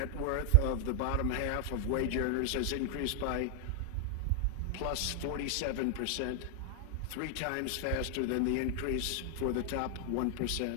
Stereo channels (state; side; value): different; both; correlation 0.00